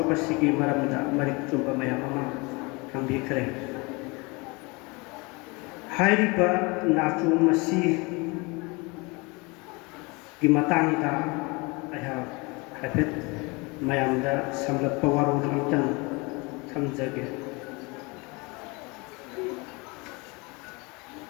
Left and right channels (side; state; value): right; quieter; 27.0 dB